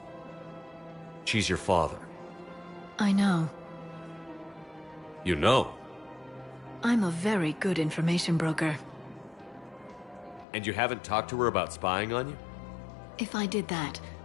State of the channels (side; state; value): right; drops out; at 10.5 s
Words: She's your father. I know. You know? I'm a very good information broker. And you haven't talked to her about spying on you? If I did that,